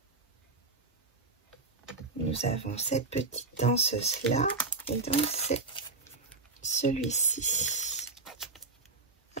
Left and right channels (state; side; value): quieter; left; 3.7 dB